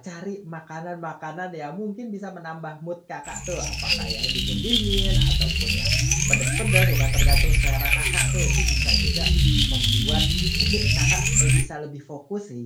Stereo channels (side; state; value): both; identical; correlation 1.00